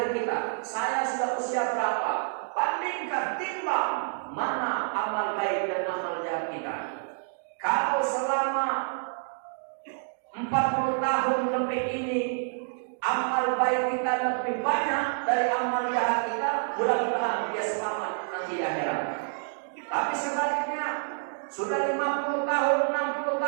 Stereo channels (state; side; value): silent; left; digital silence